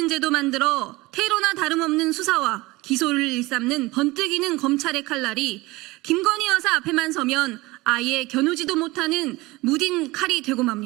제도 만들어 테러나 다름없는 수사와 기소를 일삼는 번뜩이는 검찰의 칼날이 김건희 여사 앞에만 서면 아예 겨누지도 못하는 무딘 칼이 되고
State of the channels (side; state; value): left; quieter; 21.3 dB